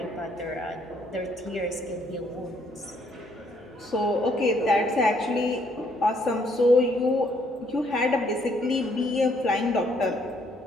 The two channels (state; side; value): normal; both; correlation 0.68